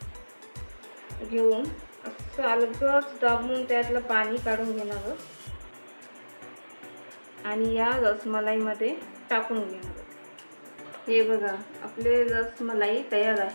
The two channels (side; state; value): both; inverted; correlation -1.00